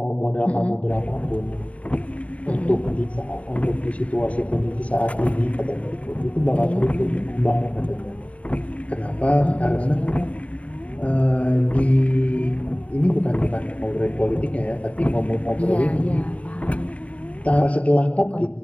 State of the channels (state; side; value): late; right; 0.066 ms